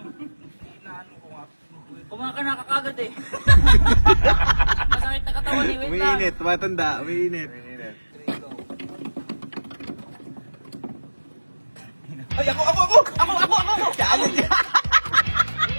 ko nga. Kumain ka na kakagad eh. Masakit na katawan eh. Wait lang. Umiinit, matanda, umiinit. Ay, ako! Challenge yan!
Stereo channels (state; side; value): inverted; both; correlation -1.00